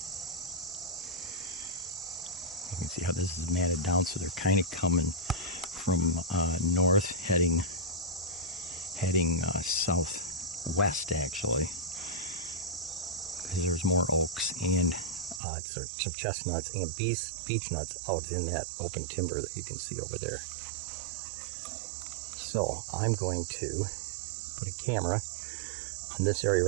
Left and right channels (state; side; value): drops out; left; at 15.4 s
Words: you can see how this is matted down. So they're kind of coming from north, heading southwest actually, because there's more oaks and some chestnuts and beech nuts out in that open timber that you can see over there. So I'm going to put a camera on this area